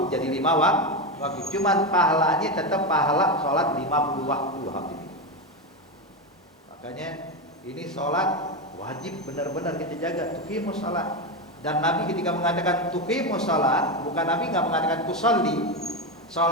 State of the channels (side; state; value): both; normal; correlation 0.13